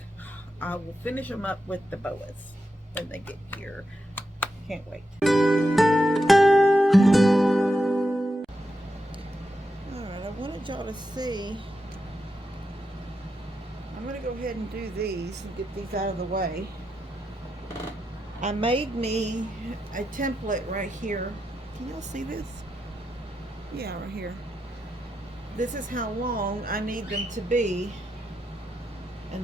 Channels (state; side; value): normal; both; correlation 0.86